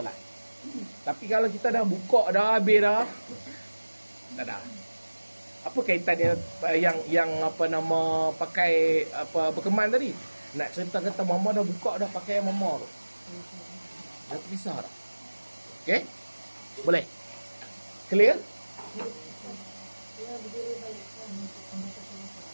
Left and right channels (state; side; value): inverted; both; correlation -1.00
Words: Tapi kalau kita dah buka dah, habis dah, tak ada. Apa kaitan yang apa nama pakai apa berkemban tadi? Nak cerita kata mama dah buka dah pakai mama tu. Dah terpisah dah. Okey? Boleh? Clear?